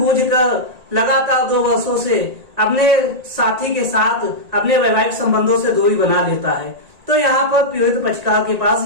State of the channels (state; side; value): late; left; 1.8 ms